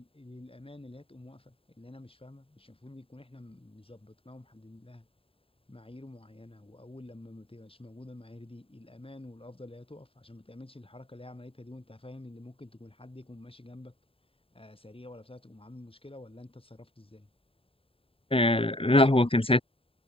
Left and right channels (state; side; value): late; right; 0.27 ms